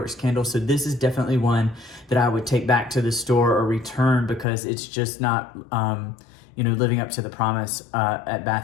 candles. So this is definitely one that I would take back to the store or return, because it's just not living up to the promise at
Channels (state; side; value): drops out; right; at 4.5 s